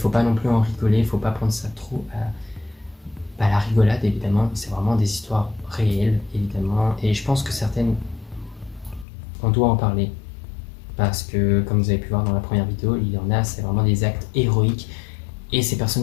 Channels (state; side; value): drops out; right; at 9.1 s